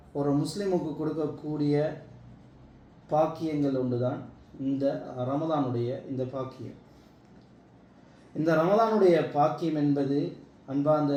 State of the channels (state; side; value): identical; both; correlation 1.00